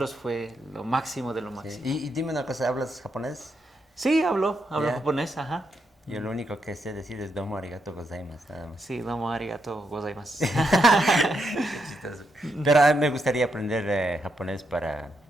fue lo máximo de lo Sí. máximo. Y dime una cosa, ¿hablas japonés? Sí, hablo Ya. japonés, ajá. Yo lo único que sé decir es domo arigato gozaimasu, nada más. Sí, domo arigato gozaimasu. Qué chistoso. Pero a mí me gustaría aprender japonés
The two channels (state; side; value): normal; both; correlation 0.81